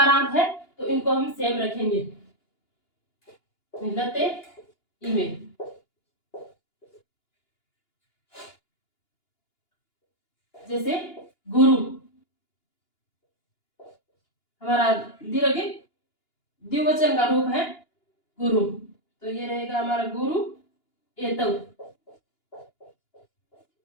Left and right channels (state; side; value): late; right; 2.9 ms